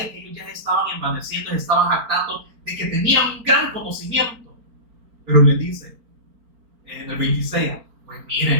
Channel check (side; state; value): left; late; 4.4 ms